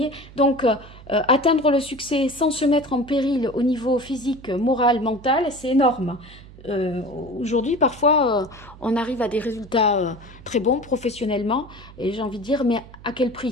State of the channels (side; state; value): right; noise; hum, 19 dB below the sound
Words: donc, atteindre le succès sans se mettre en péril au niveau physique, moral, mental, c'est énorme. Aujourd'hui, parfois, on arrive à des résultats très bons professionnellement et j'ai envie de dire, mais à quel